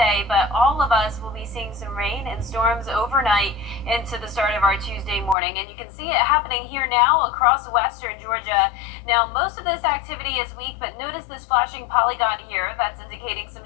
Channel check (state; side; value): drops out; right; at 5.4 s